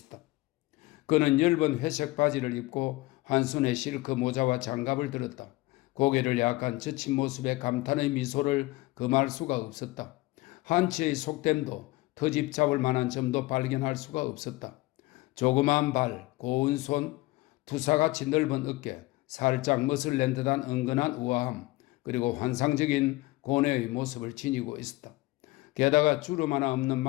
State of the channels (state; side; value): quieter; right; 20.3 dB